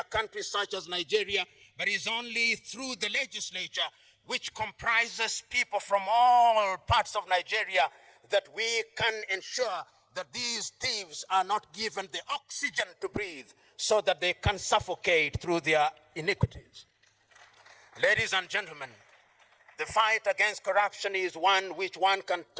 country such as Nigeria, but is only through the legislature, which comprises people from all parts of Nigeria, that we can ensure that these thieves are not given the oxygen to breathe so that they can suffocate through their iniquities. Ladies and gentlemen, the fight against corruption is one which one can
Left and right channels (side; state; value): both; identical; correlation 1.00